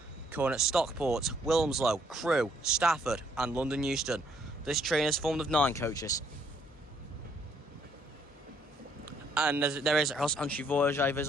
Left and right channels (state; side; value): normal; both; correlation 0.67